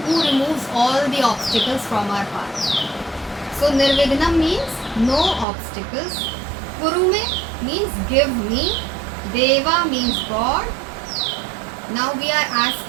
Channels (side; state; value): left; drops out; at 5.5 s